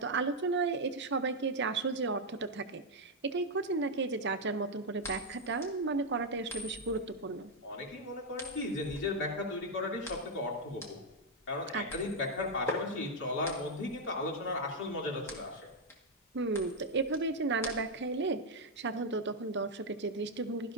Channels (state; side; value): normal; both; correlation 0.00